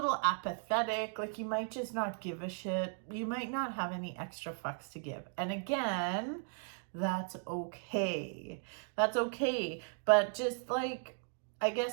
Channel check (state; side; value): silent; left; 53 dB below the other